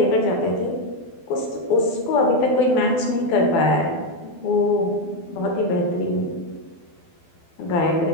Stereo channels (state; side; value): late; right; 12 ms